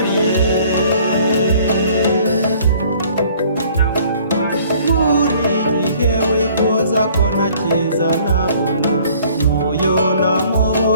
Buri gihe wifuza ko nakiza nabona, n'uyo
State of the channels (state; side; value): inverted; both; correlation -0.56